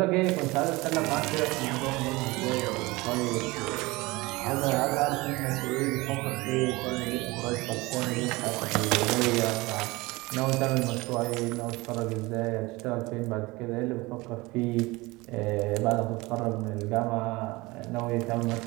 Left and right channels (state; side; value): quieter; left; 22.4 dB